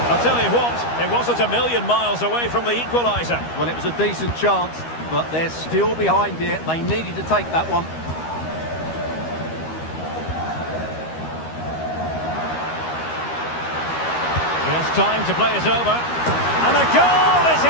I'll tell you what, it wasn't a million miles away from the equaliser. Well, it was a decent chance, but they're still behind here. They needed to take that one. He has time to play it over. And a goal it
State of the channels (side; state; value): right; late; 13 ms